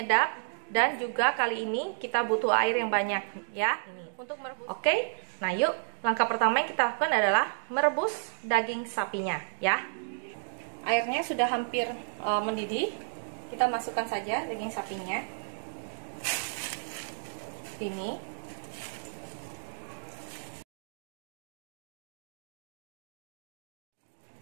dan juga kali ini kita butuh air yang banyak ya. Ini untuk merebus. Oke, nah yuk langkah pertama yang kita lakukan adalah merebus daging sapinya ya. Airnya sudah hampir mendidih. Kita masukkan saja daging sapinya. Ini.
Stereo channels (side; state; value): left; silent; digital silence